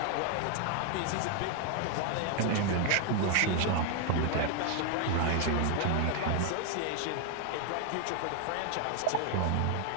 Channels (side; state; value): both; different; correlation 0.00